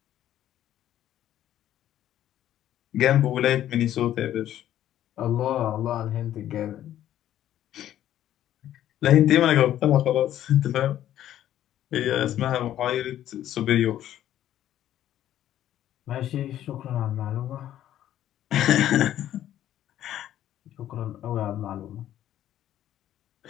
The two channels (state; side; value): quieter; right; 12.0 dB